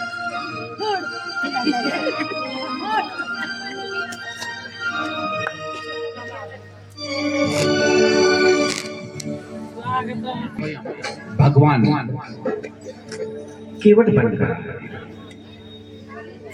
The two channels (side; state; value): both; identical; correlation 1.00